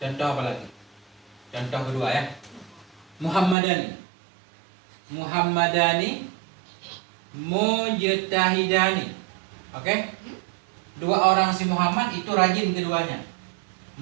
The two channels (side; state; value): left; drops out; at 3.6 s